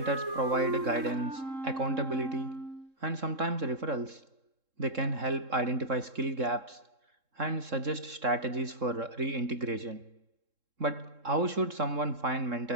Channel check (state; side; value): late; left; 3.7 ms